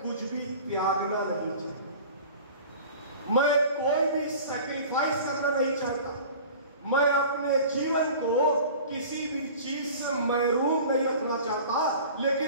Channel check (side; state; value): both; inverted; correlation -0.41